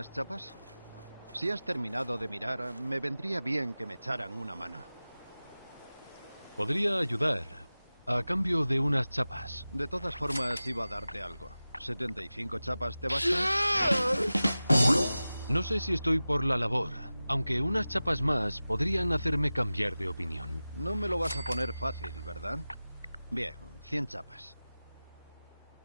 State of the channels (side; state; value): both; inverted; correlation -0.96